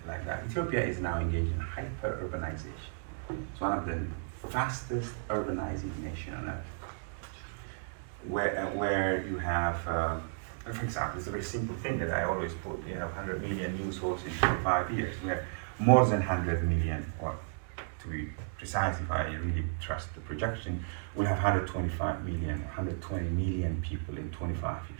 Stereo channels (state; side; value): silent; left; digital silence